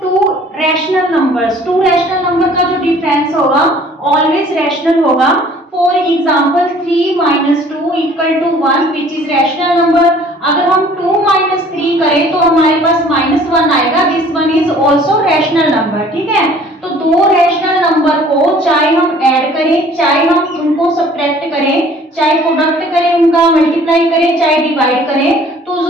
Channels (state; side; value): normal; both; correlation 0.53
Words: two rational numbers, two rational number का जो डिफरेंस होगा ऑलवेज रैशनल होगा। For example 3 minus 2 equal to 1 which is rational number. अगर हम 2 माइनस 3 करें तो हमारे पास -1 आएगा, this one is also rational number, ठीक है। तो दो रैशनल नंबर को चाहे हम ऐड करें, चाहे हम उनको सब्ट्रैक्ट करें, चाहे प्रोडक्ट करें, उनका मल्टीप्लाई करें, चाहे डिवाइड करें, तो